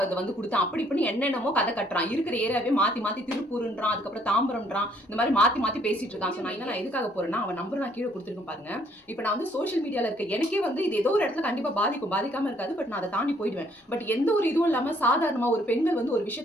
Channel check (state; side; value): normal; both; correlation 0.65